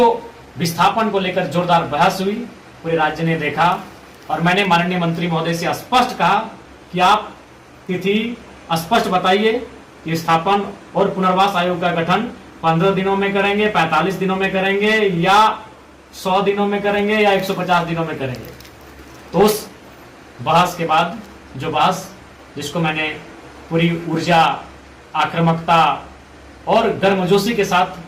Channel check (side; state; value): both; identical; correlation 1.00